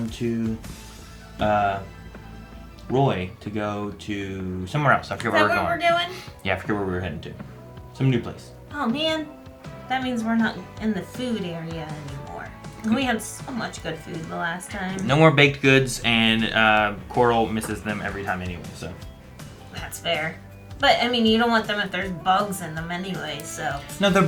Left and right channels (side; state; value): both; identical; correlation 1.00